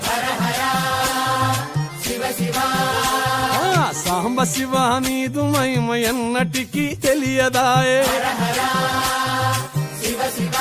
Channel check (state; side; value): identical; both; correlation 1.00